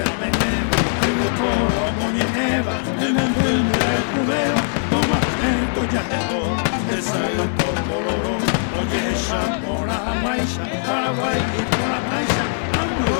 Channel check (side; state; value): right; silent; 65 dB below the other